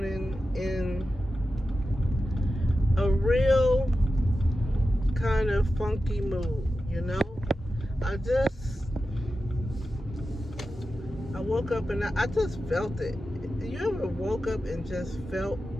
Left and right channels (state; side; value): normal; both; correlation 0.92